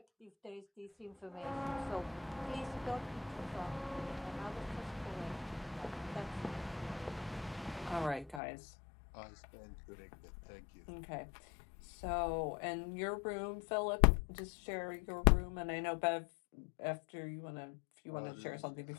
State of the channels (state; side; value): drops out; right; at 8.4 s